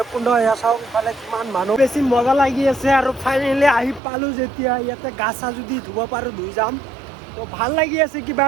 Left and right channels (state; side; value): drops out; left; at 4.0 s